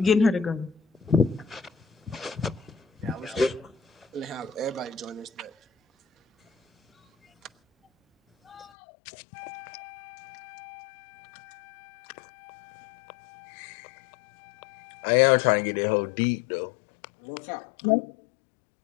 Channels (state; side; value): drops out; right; at 8.7 s